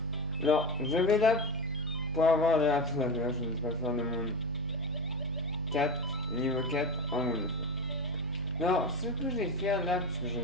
Alors, je vais là pour avoir les ratés laveurs, je ne vais pas faire le monde 4, niveau 4 en monde de feu. Alors, ce que je vais faire là, puisque je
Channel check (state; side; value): normal; both; correlation 0.20